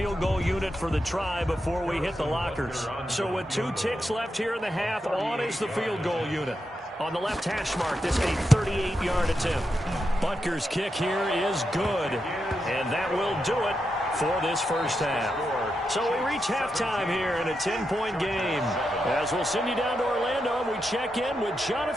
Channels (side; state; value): both; normal; correlation 0.86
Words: goal unit for the try before we hit the lockers. So with 2 ticks left here in the half, on is the field goal unit. On the left hash mark, this a 38-yard attempt. Butker's kick here is good. And that will do it for this first half. So we reach halftime here in a 10-point game. As we'll send you down to Orlando, we check in with